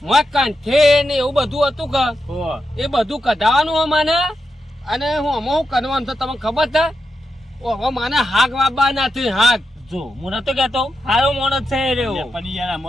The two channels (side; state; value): both; normal; correlation 0.86